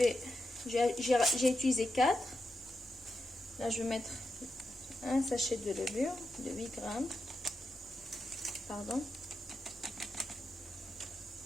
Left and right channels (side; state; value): both; normal; correlation 0.87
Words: utilisé 4. Là, je vais mettre un sachet de levure de 8 grammes. Pardon.